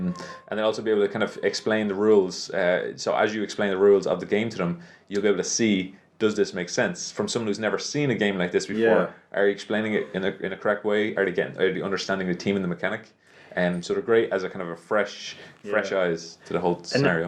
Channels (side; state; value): both; identical; correlation 1.00